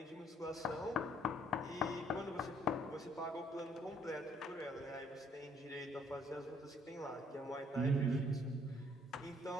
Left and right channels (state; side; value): normal; both; correlation 0.64